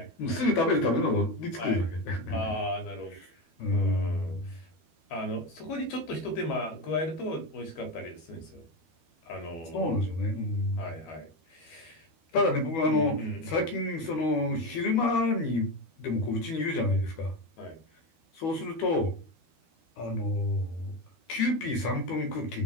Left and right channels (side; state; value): right; late; 12 ms